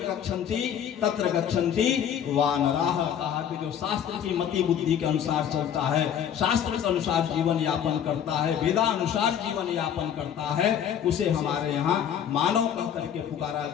गच्छन्ति तत्र गच्छन्ति वानराः। कहा कि जो शास्त्र की मति बुद्धि के अनुसार चलता है, शास्त्र के अनुसार जीवन यापन करता है, वेदानुसार जीवन यापन करता है, उसे हमारे यहाँ मानव कह करके पुकारा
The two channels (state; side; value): quieter; right; 9.0 dB